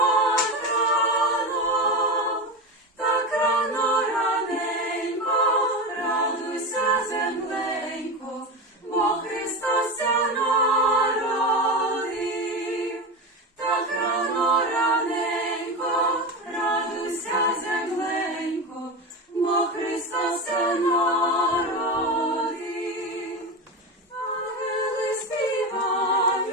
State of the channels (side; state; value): both; normal; correlation 0.21